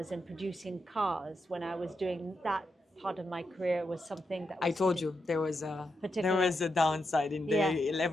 and producing cars when I was doing that part of my career was something that was I told you there particular. was a downside in the Yeah.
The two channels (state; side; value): normal; both; correlation 0.85